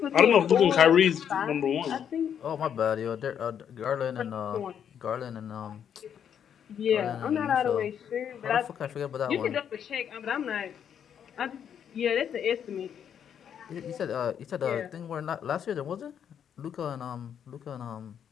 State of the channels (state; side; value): quieter; right; 8.6 dB